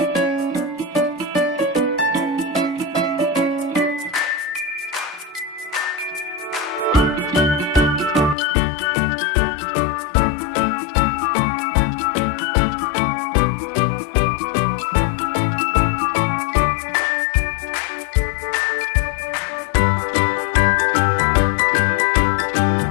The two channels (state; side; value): drops out; right; at 8.3 s